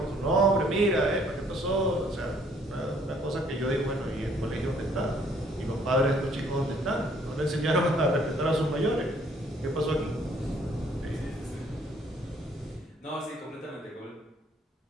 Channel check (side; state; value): both; normal; correlation 0.63